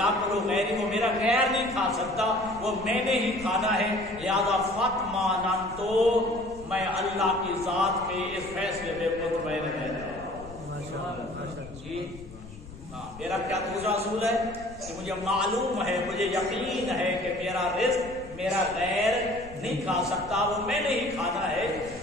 غیری، وہ میرا غیر نہیں کھا سکتا، وہ میں نے ہی کھانا ہے، لہذا فاطمأننت، میں اللہ کی ذات کے اس فیصلے میں مطمئن رہتا ہوں۔ جی ہاں، میرا کیا دوسرا اصول ہے کہ مجھے معلوم ہے، مجھے یقین ہے کہ میرا رزق میرا غیر نہیں کھا سکتا، وہ میں نے ہی کھانا ہے،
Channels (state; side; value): noise; left; rumble, 16 dB below the sound